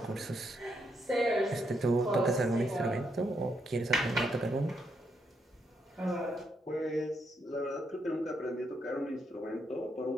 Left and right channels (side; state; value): both; normal; correlation 0.78